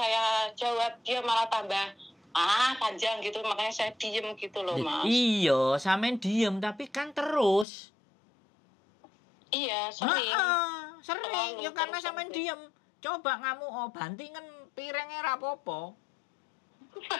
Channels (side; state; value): right; drops out; at 7.7 s